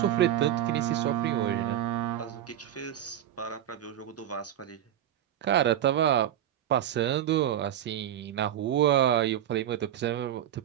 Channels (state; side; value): quieter; left; 11.0 dB